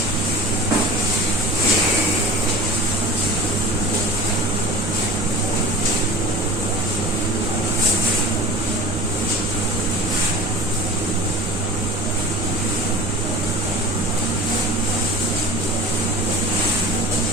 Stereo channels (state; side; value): normal; both; correlation 0.40